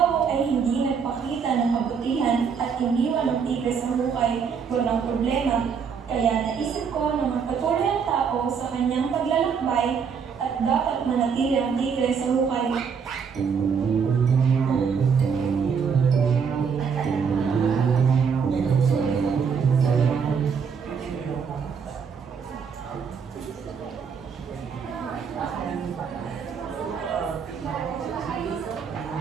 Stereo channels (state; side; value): quieter; left; 6.3 dB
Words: ay hindi nagpakita ng kabutihan at iniwan ng tigre sa hukay, walang problema. Kaya naisip ko na magpatuloy ang tao sa kanyang paglalakbay at dapat manatili ang tigre sa hukay.